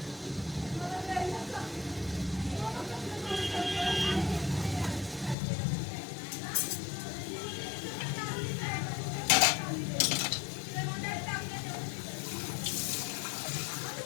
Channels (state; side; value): drops out; right; at 5.4 s